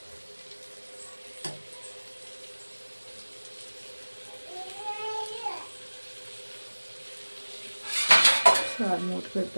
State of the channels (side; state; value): both; inverted; correlation -1.00